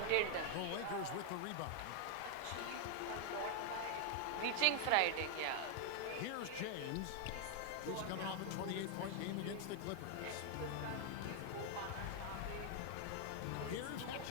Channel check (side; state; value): both; different; correlation 0.00